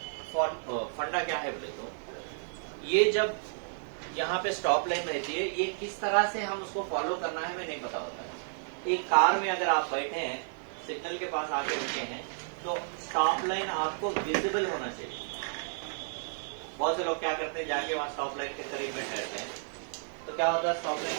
फंडा क्या है बोले तो, ये जब यहाँ पे स्टॉप लाइन रहती है, ये किस तरह से हम उसको फॉलो करना है हमें नहीं पता होता है। एक कार में अगर आप बैठे हैं, सिग्नल के पास आके रुके हैं, तो स्टॉप लाइन आपको विजिबल होना चाहिए। बहुत से लोग क्या करते हैं, जाके वहां स्टॉप लाइन के करीब में ठहरते हैं, तो क्या होता है, स्टॉप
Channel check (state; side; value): silent; left; 57 dB below the other